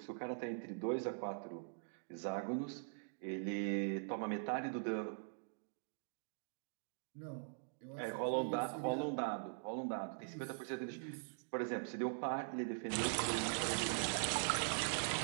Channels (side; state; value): left; silent; digital silence